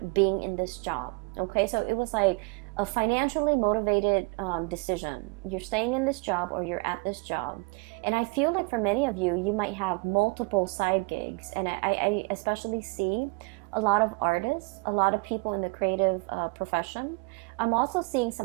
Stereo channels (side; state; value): left; quieter; 31.3 dB